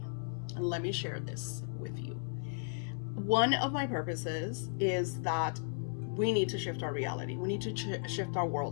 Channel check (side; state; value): right; silent; 54 dB below the other